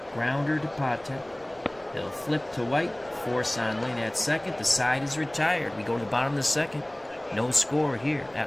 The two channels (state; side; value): noise; right; rumble, 28 dB below the sound